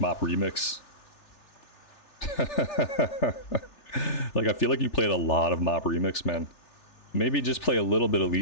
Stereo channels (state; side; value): late; right; 3.4 ms